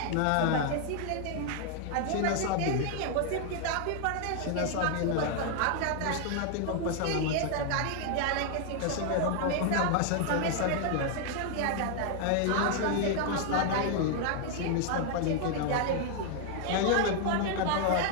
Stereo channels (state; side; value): different; both; correlation 0.00